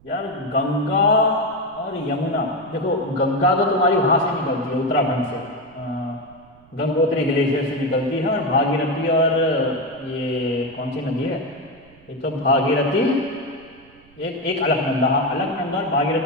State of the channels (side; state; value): right; noise; rumble, 28 dB below the sound